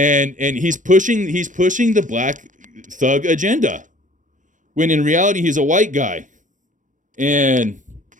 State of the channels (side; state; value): left; late; 0.37 ms